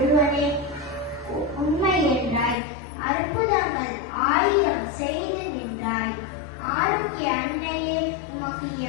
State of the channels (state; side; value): drops out; right; at 2.6 s